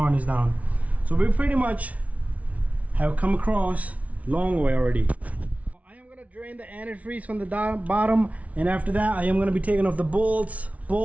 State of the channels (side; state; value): left; late; 0.067 ms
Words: down. So we pretty much have come across long way already. I am gonna drain the antifreeze from the bottom, and after that I am gonna be taking off the bolts